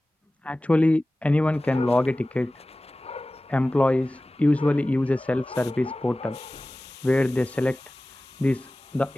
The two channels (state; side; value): normal; both; correlation 0.97